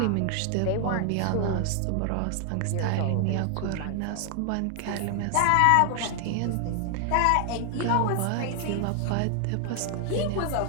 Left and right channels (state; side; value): different; both; correlation 0.00